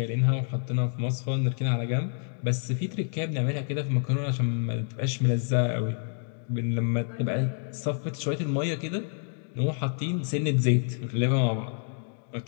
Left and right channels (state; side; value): silent; right; 59 dB below the other